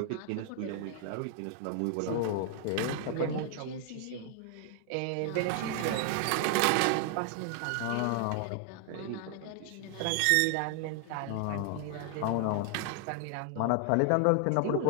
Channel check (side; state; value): both; different; correlation 0.00